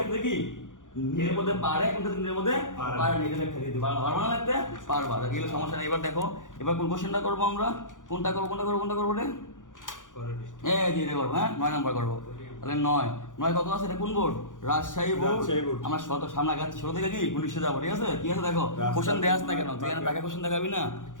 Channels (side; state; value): right; late; 0.87 ms